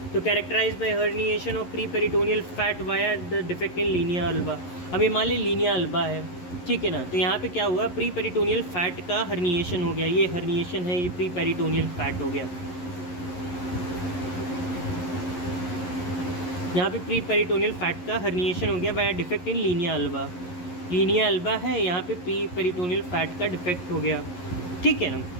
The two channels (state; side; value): late; right; 11 ms